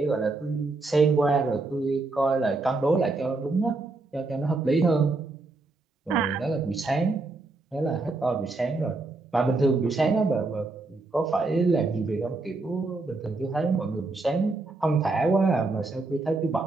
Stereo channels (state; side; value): quieter; left; 3.4 dB